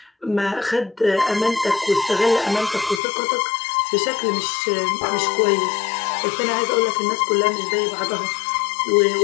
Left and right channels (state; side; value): drops out; right; at 3.0 s